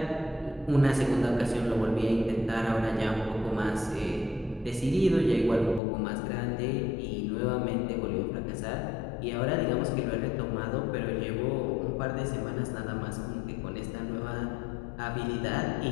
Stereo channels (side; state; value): right; drops out; at 5.8 s